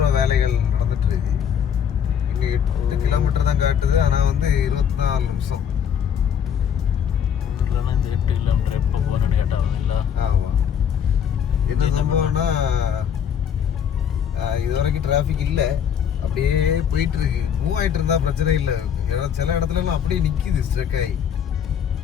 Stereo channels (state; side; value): quieter; right; 8.3 dB